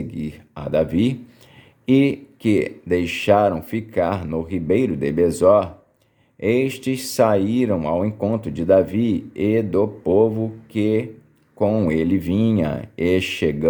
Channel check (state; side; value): identical; both; correlation 1.00